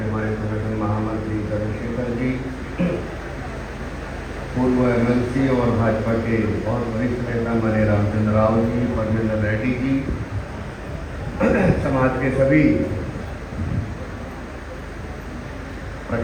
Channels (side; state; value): both; identical; correlation 1.00